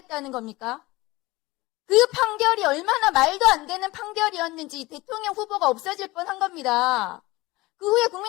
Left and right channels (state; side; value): quieter; right; 20.7 dB